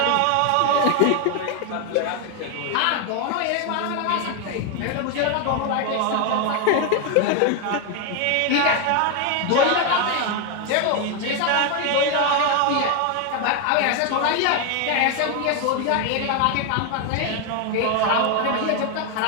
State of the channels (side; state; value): both; different; correlation 0.01